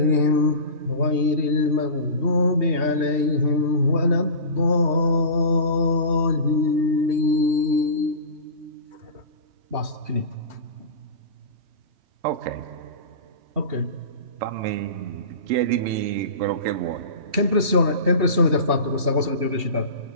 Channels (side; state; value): left; late; 2.7 ms